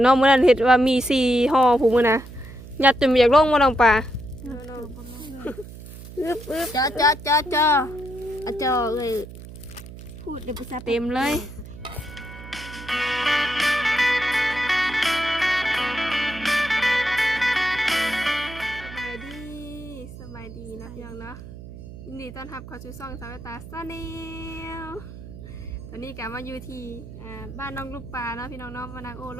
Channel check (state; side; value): noise; right; hum, 14 dB below the sound